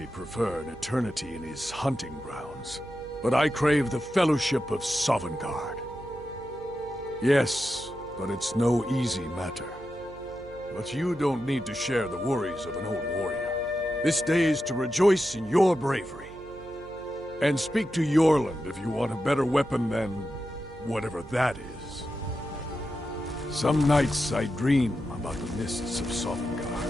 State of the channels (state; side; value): noise; right; hum, 18 dB below the sound